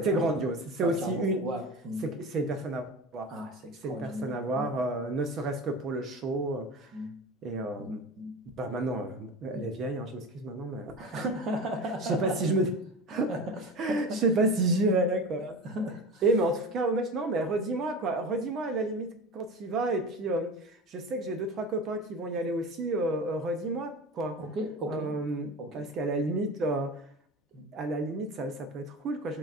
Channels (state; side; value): normal; both; correlation 0.31